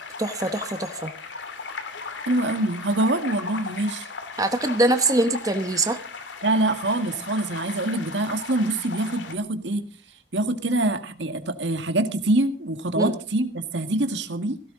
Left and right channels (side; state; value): both; normal; correlation 0.38